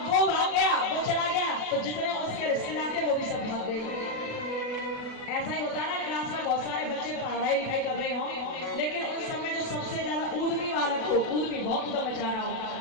वो भाग गया, वो चला गया, तो जितने उसके रिश्तेदार थे वो भी सब भाग गए। ऐसा ही होता है ना, क्लास में बहुत सारे बच्चे पढ़ाई लिखाई कर रहे हो, लेकिन उस समय जो सबसे ज्यादा ऊधमी बालक हो, ऊधमी बहुत उधम मचा रहा हो,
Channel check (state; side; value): late; right; 36 ms